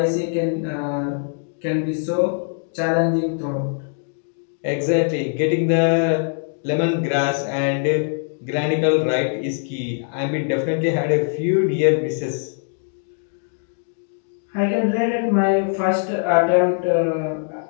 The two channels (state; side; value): silent; right; 64 dB below the other